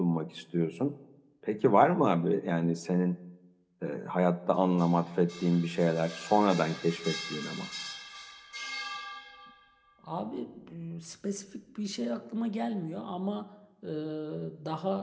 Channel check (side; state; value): both; identical; correlation 1.00